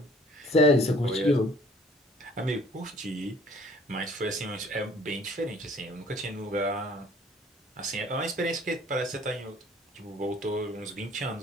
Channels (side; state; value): both; normal; correlation 0.55